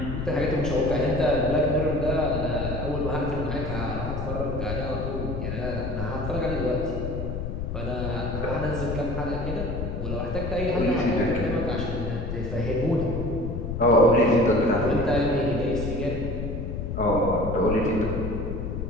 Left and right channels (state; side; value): noise; left; rumble, 4 dB below the sound